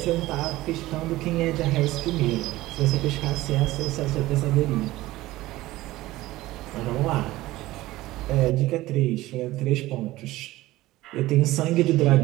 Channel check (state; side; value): quieter; left; 17.4 dB